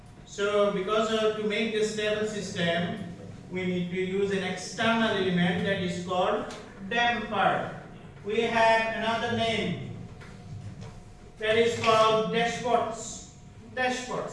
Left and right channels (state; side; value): identical; both; correlation 1.00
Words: So because to make a stable system, we need to use an external element that is called damper. We have another name that is called dashports.